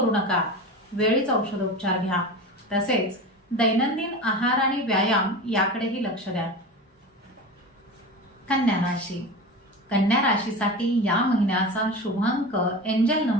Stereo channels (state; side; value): normal; both; correlation 0.29